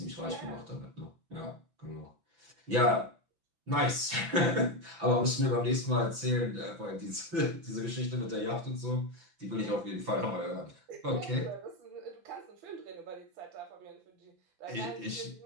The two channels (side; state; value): left; late; 5.9 ms